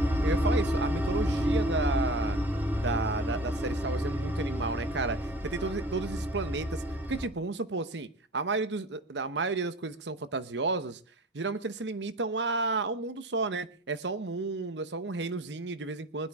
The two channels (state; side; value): normal; both; correlation 0.40